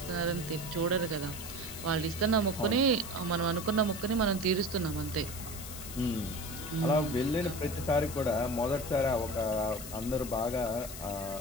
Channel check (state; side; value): noise; left; hiss, 11 dB below the sound